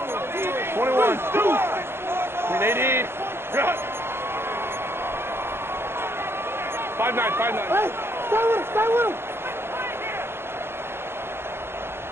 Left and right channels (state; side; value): late; left; 0.11 ms